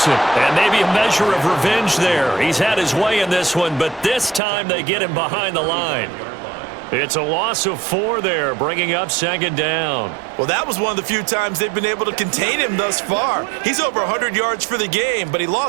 and maybe a measure of revenge there. He's had his way in this one, but this time they get him behind the line. It's a loss of 4 there, bringing up 2nd down. Well, that was one of the few times they've been able to contain him thus far. He's over 100 yards for the game, but he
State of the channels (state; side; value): drops out; left; at 4.4 s